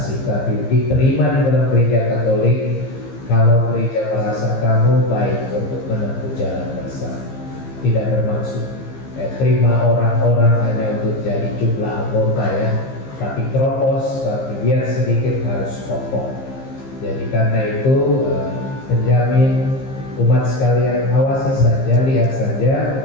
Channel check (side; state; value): right; late; 15 ms